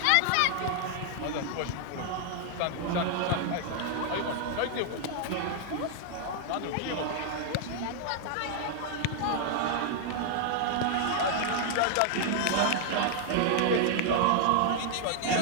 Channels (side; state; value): both; different; correlation 0.00